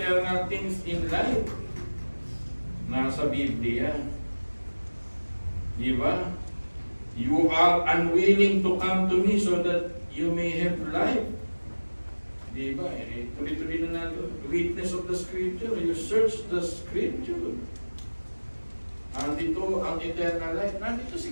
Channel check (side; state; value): both; inverted; correlation -1.00